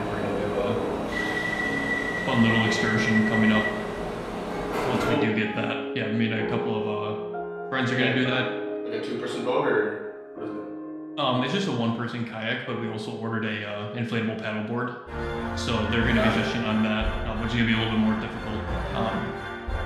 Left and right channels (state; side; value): identical; both; correlation 1.00